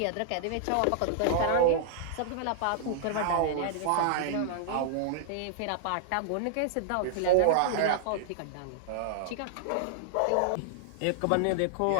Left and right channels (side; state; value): both; different; correlation -0.01